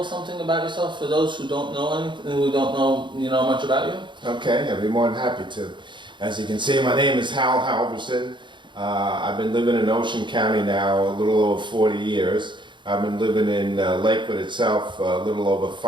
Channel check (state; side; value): late; left; 0.23 ms